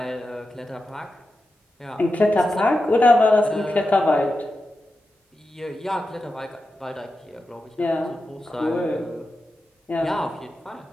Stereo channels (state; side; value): normal; both; correlation 0.90